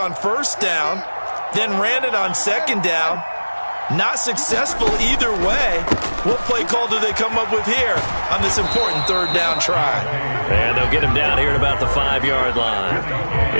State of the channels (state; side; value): inverted; both; correlation -1.00